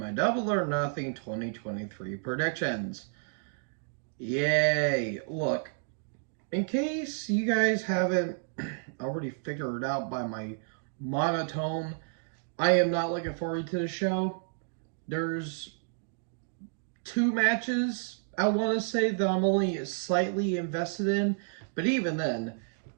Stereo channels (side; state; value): left; silent; digital silence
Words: Double or Nothing 2023 predictions. Yay! Look, in case you guys haven't already figured it out by my monotone, I am not looking forward to the show. There's 2 matches I want to say that I'm only slightly invested in, but even then,